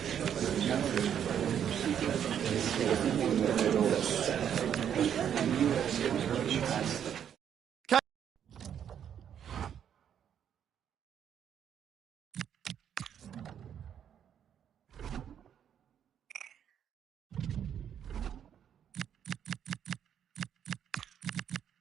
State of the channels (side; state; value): left; quieter; 9.0 dB